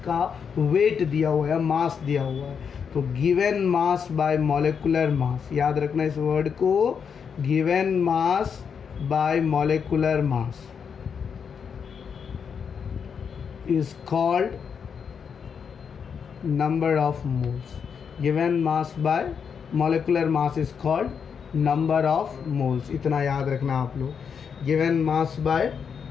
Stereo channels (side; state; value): right; quieter; 6.7 dB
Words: वेट दिया हुआ है, मास दिया हुआ है, तो गिवन मास बाय मॉलिक्यूलर मास, याद रखना इस वर्ड को, given mass by molecular mass is called number of moles. Given mass by molecular mass is called number of moles. इतना याद रखना आप लोग, given mass by